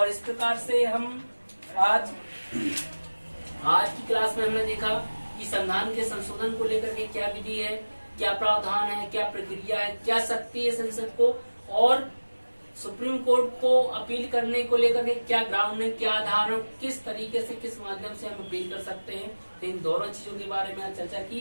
इस प्रकार से हम आज की क्लास में हमने देखा कि संविधान के संशोधन को लेकर के क्या विधि है, क्या प्रावधान है, क्या प्रक्रिया है, क्या शक्ति है संसद को, और सुप्रीम कोर्ट को अपील करने को लेकर के क्या ग्राउंड है, क्या आधार है, किस तरीके से, किस माध्यम से हम अपील कर सकते हैं। तो इन दोनों चीजों के बारे में चर्चा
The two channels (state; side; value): inverted; both; correlation -1.00